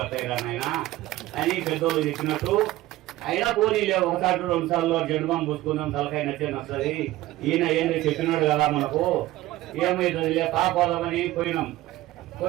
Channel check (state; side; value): quieter; left; 16.6 dB